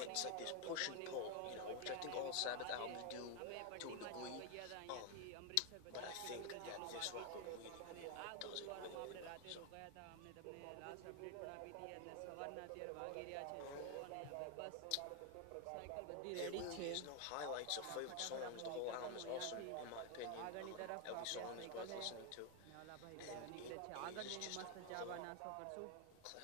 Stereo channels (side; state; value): both; different; correlation 0.01